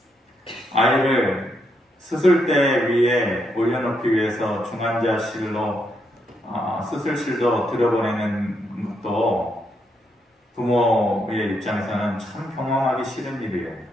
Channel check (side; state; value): both; normal; correlation 0.78